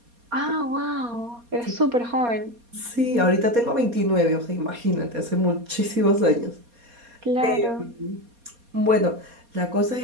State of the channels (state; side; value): late; left; 4.2 ms